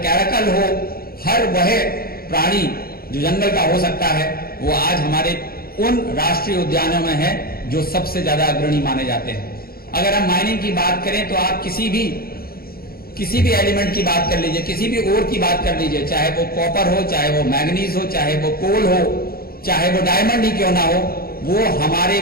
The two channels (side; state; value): right; late; 0.44 ms